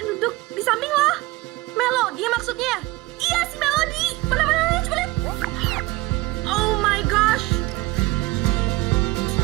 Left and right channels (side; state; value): left; quieter; 20.6 dB